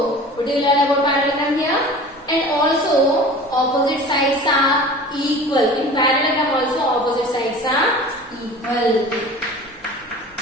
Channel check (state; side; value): normal; both; correlation 0.40